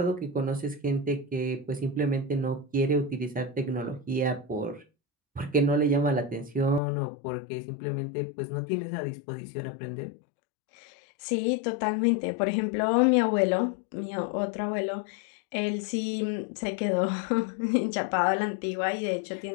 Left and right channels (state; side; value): drops out; right; at 6.8 s